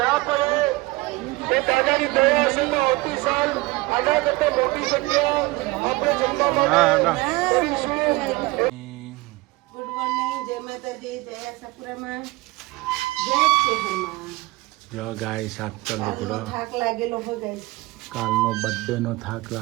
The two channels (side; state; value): left; quieter; 21.5 dB